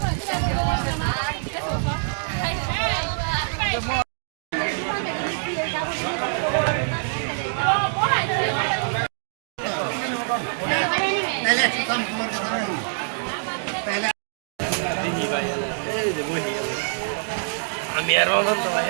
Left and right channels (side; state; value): left; silent; digital silence